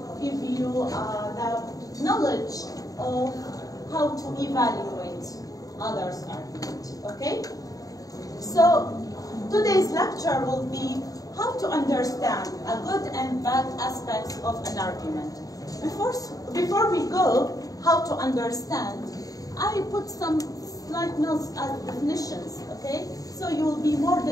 give you the knowledge of how to evaluate others' argument. Okay? So today's lecture will be how to understand a good and bad aspects of an argument. Before we go, how to understand, I put some slight notes as definitions, okay? So you will be more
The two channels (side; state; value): right; late; 0.17 ms